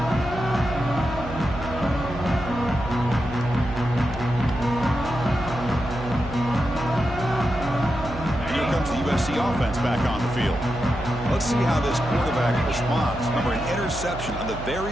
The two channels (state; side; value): noise; right; hum, 10 dB below the sound